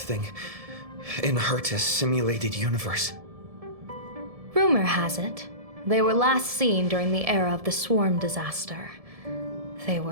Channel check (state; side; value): late; left; 1.7 ms